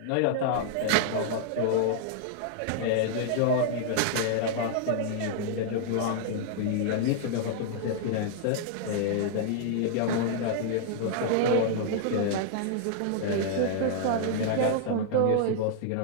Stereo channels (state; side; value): different; both; correlation -0.01